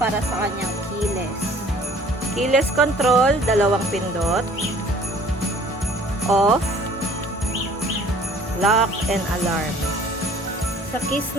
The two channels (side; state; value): both; normal; correlation 0.53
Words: sa kanyang keyless. Keyless control, dalawang pindot. Off, lock, and alarm. Sa keys